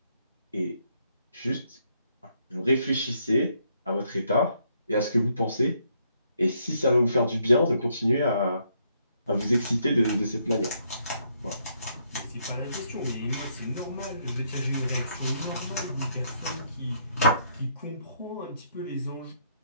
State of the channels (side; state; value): both; inverted; correlation -0.73